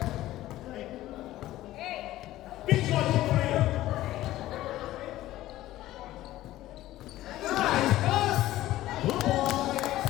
Big one for three. Nice pass. 2 points.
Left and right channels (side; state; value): right; quieter; 15.2 dB